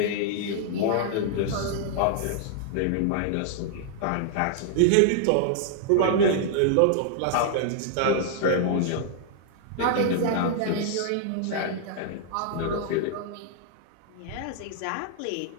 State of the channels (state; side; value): different; both; correlation -0.01